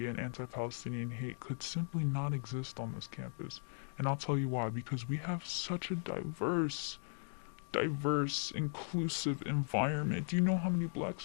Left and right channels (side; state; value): right; silent; digital silence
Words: and anti-Palestinian hate could simply not exist on this campus. And I'll tell you why. Because we have such a diverse, inclusive environment. Do you know how many black